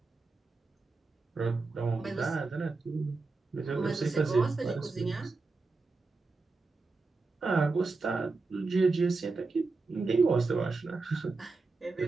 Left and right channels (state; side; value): quieter; left; 3.9 dB